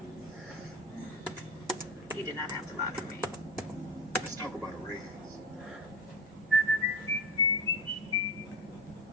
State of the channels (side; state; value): left; noise; hum, 30 dB below the sound